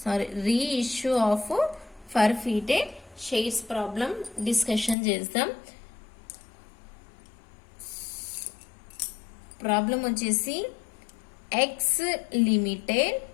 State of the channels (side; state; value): right; drops out; at 5.0 s